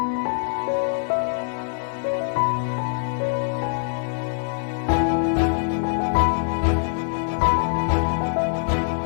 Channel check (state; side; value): silent; right; digital silence